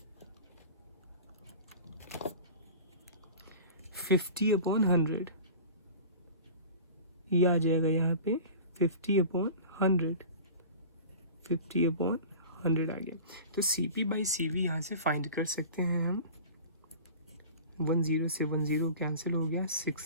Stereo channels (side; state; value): both; inverted; correlation -0.38